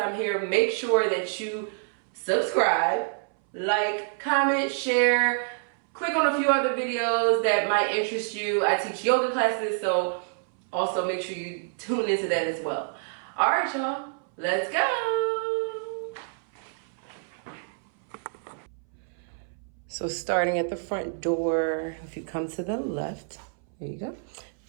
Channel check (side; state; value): left; silent; 60 dB below the other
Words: here, make sure that you subscribe, like, comment, share, click on a few other videos that might interest you. I teach yoga classes, so also make sure you tune into that as well. All right, y'all, let's go. So starting at the front door, if you come to the left, there you go.